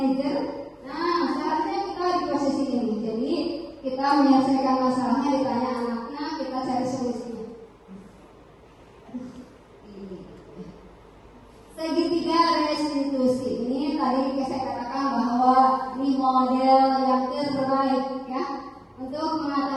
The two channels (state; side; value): identical; both; correlation 1.00